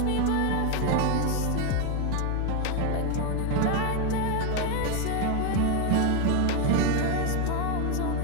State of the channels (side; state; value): both; different; correlation 0.02